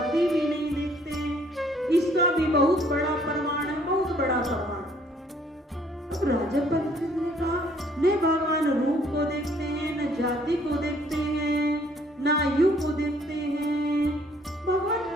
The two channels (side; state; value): both; normal; correlation 0.61